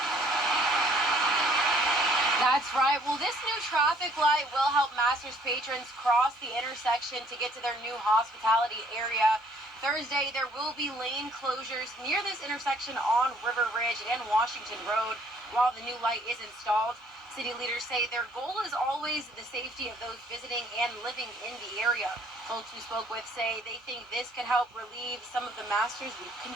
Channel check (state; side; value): normal; both; correlation 0.61